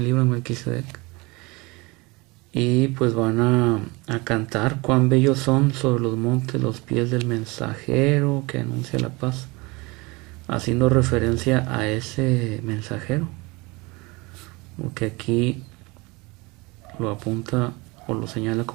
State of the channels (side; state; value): left; quieter; 25.1 dB